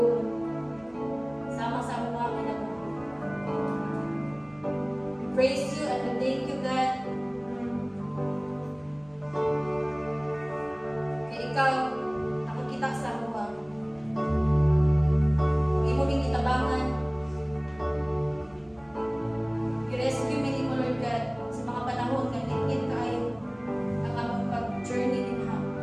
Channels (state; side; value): noise; right; hum, 28 dB below the sound